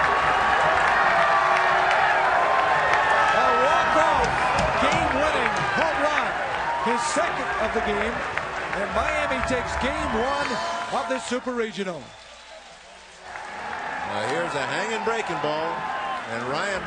A walk-off, game-winning home run. His second of the game. And Miami takes game 1 of this Super Regional. Here's a hanging breaking ball. And Ryan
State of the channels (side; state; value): both; identical; correlation 1.00